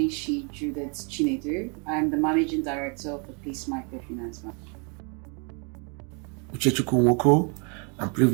Judith Chinedu. I'm the Managing Director of the Peace Microfinance Bank. Uchechukwu Nwoko. I'm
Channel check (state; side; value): quieter; left; 35.9 dB